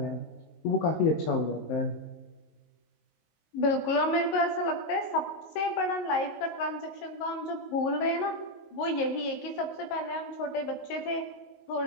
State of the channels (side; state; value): right; late; 19 ms